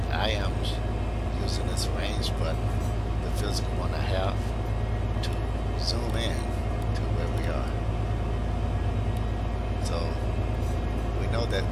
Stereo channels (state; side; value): identical; both; correlation 1.00